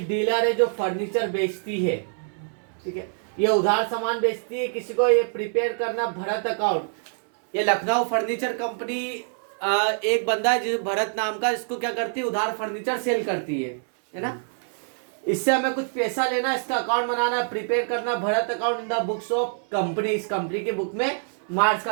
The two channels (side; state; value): left; silent; digital silence